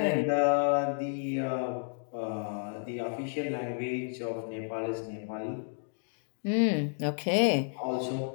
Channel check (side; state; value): right; silent; digital silence